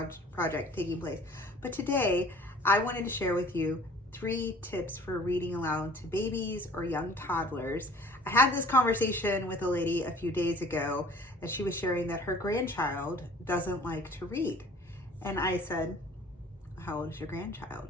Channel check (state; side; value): normal; both; correlation 0.50